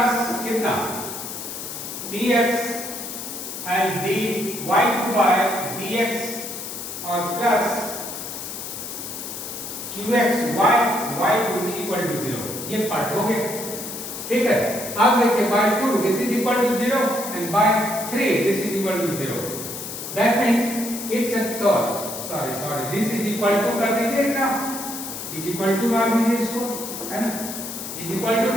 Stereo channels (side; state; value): left; noise; hiss, 8 dB below the sound